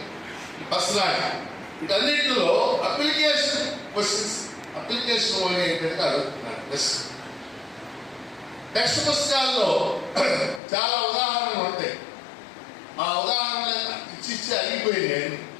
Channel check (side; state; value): right; drops out; at 10.6 s